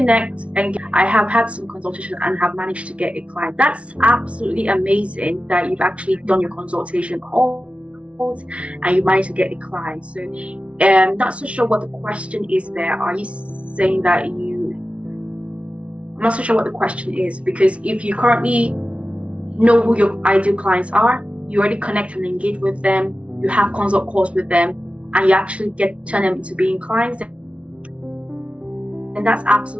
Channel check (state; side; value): late; left; 0.062 ms